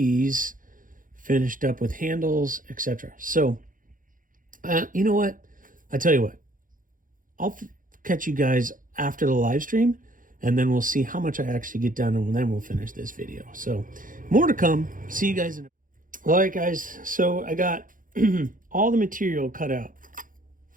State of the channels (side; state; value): left; late; 0.39 ms